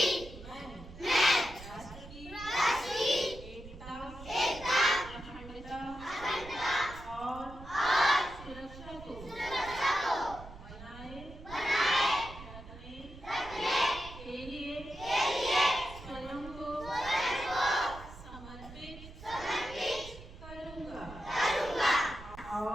मैं राष्ट्र की एकता अखंडता और सुरक्षा को बनाए रखने के लिए स्वयं को समर्पित करूँगा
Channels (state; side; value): noise; right; rumble, 15 dB below the sound